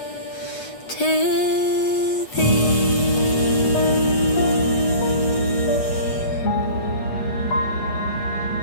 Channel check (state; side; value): late; right; 8.1 ms